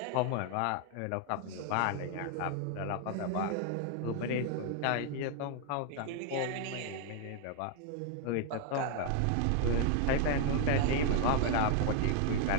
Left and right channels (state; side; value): different; both; correlation 0.00